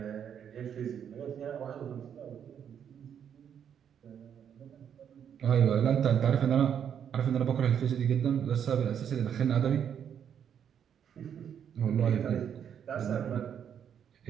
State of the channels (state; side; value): quieter; left; 8.5 dB